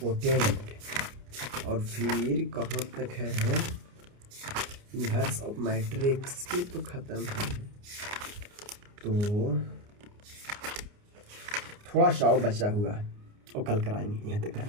और फिर कहाँ तक है इन्वर्स ऑफ मैट्रिक्स भी तो खत्म है, तो थोड़ा सा बचा हुआ है और कल कराएंगे। यहाँ तक।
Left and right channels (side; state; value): left; late; 29 ms